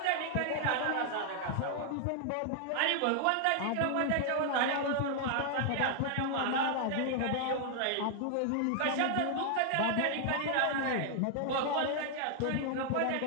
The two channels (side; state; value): both; different; correlation 0.00